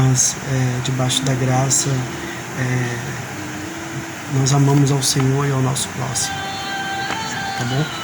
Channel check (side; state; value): both; identical; correlation 1.00